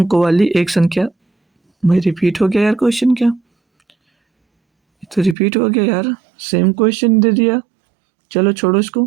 वाली एक संख्या, भाई रिपीट हो गया यार क्वेश्चन, क्या तो रिपीट हो गया यार, सेम क्वेश्चन दे दिया। चलो छोड़ो इसको,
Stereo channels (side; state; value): left; drops out; at 5.4 s